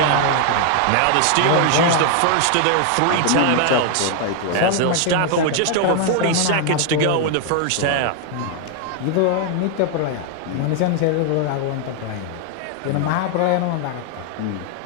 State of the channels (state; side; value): different; both; correlation 0.00